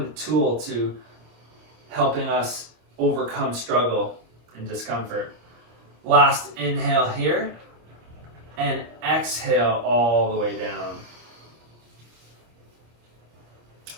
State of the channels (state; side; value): late; left; 26 ms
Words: tool to helping us overcome struggle and discomfort. Last inhale here, and exhale all the way down.